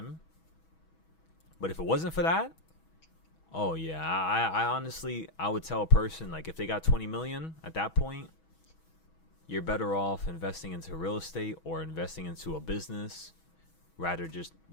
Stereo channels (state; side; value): late; right; 6.2 ms